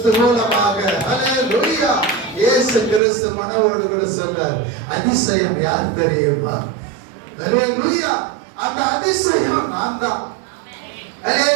மூலமாக. ஹல்லேலூயா. இயேசு கிறிஸ்து மனவோடு கூட சொல்றார், அதிசயம் யார் தெரியுமா? ஹல்லேலூயா. அந்த அதிசயம் நான் தான்.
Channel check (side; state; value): left; drops out; at 3.0 s